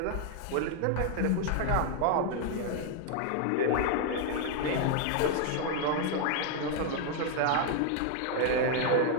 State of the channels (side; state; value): both; different; correlation 0.00